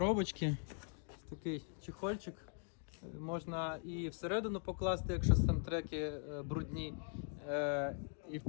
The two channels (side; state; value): right; silent; 50 dB below the other